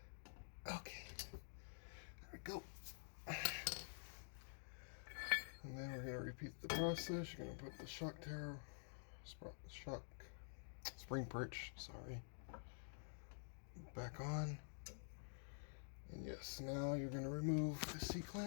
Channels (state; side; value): silent; right; digital silence